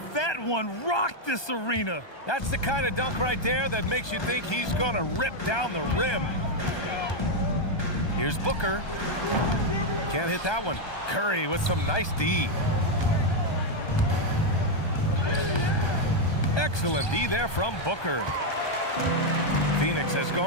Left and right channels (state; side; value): late; right; 1.2 ms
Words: That one rocked this arena. That's the kind of dunk right there that makes you think he's going to rip down the rim. Here's Booker. Can't hit that one. Curry with some nice D. Excellent D there from Booker. Phoenix has